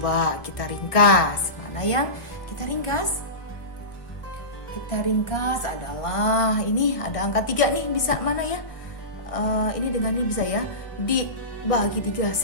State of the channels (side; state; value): right; late; 1.6 ms